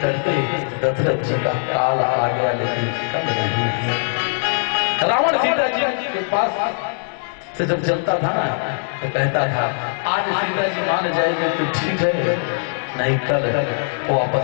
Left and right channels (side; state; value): right; silent; digital silence